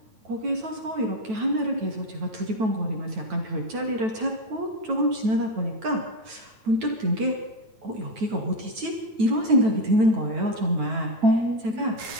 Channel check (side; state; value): left; late; 9.1 ms